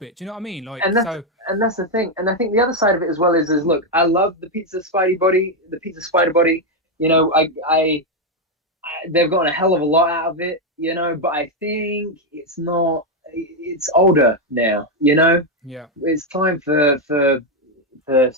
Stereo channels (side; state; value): both; normal; correlation 0.04